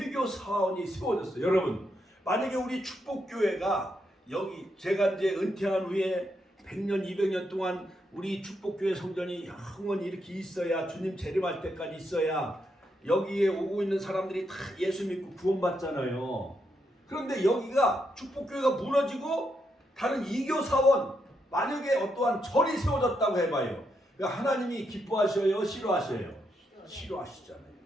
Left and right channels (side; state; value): both; normal; correlation 0.80